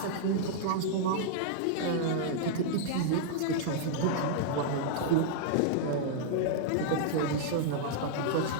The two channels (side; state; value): both; different; correlation -0.02